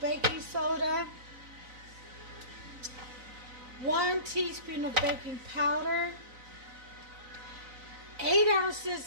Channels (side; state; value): left; late; 4.0 ms